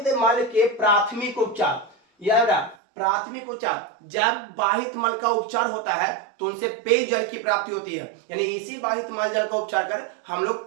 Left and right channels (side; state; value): left; drops out; at 2.8 s